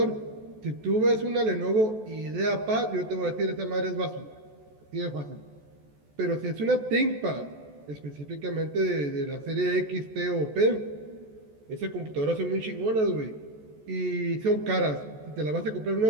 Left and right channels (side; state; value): left; late; 14 ms